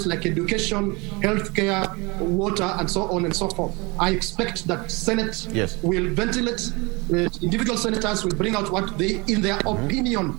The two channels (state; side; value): quieter; left; 26.9 dB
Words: like education, healthcare, water, and so on and so forth. I expect that Senate will ventilate, individual senators will bring out what they, in their opinion,